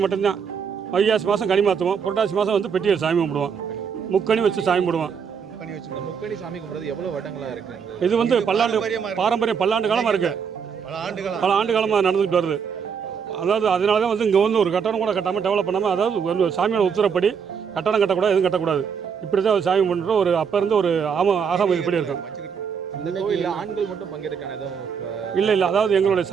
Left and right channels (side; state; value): left; quieter; 6.7 dB